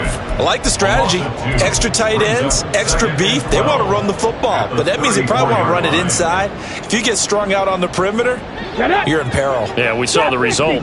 I like the strategy. Extra tight ends, extra beef. They want to run the football, but that means they probably want to run it inside. If you get strung out on the perimeter, you're in peril. Yeah, we saw the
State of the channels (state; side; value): identical; both; correlation 1.00